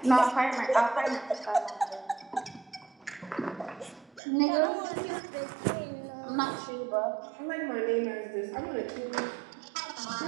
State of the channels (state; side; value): drops out; left; at 4.2 s